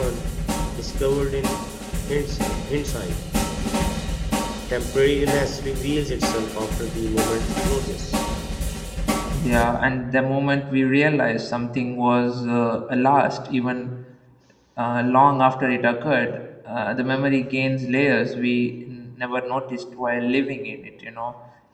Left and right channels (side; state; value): both; identical; correlation 1.00